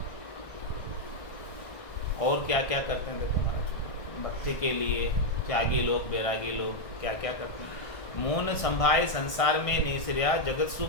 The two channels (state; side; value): late; right; 1.6 ms